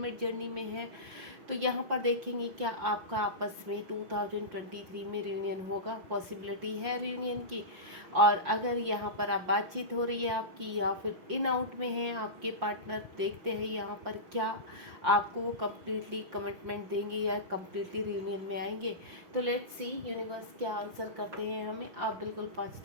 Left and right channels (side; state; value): left; late; 5.7 ms